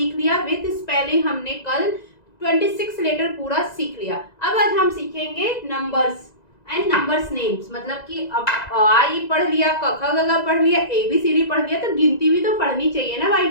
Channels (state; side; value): late; right; 2.0 ms